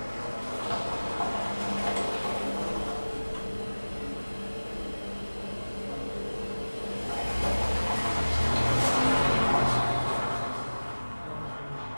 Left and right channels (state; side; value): inverted; both; correlation -1.00